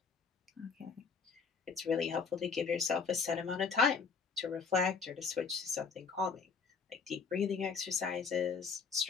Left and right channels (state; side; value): quieter; right; 5.4 dB